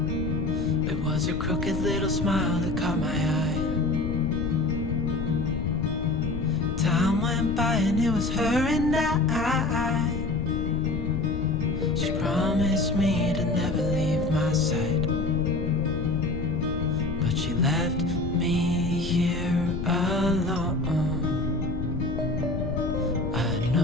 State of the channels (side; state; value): left; noise; rumble, 4 dB below the sound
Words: It was her crooked little smile that caught my eye. Time went by and it was her and I. She promised me to never leave my side, but she left me here alone. I